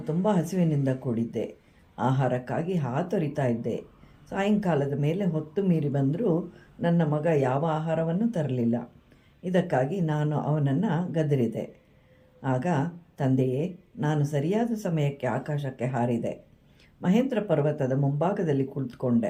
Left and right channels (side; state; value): both; identical; correlation 1.00